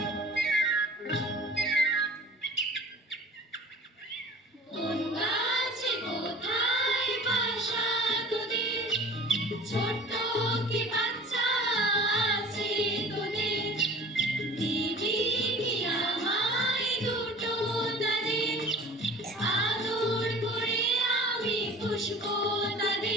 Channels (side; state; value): both; normal; correlation 0.44